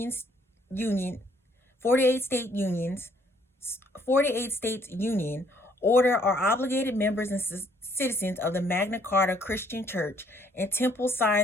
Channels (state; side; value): normal; both; correlation 0.64